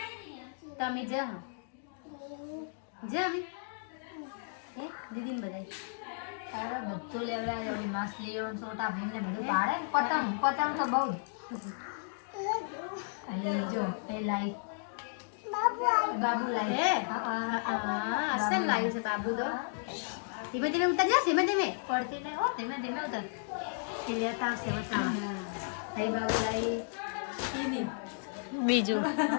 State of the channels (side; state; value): right; silent; digital silence